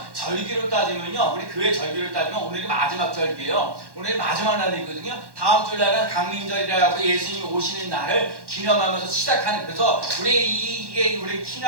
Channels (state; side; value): late; left; 1.1 ms